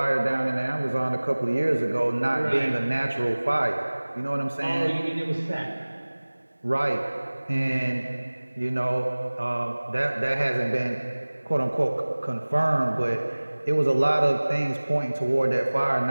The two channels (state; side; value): inverted; both; correlation -1.00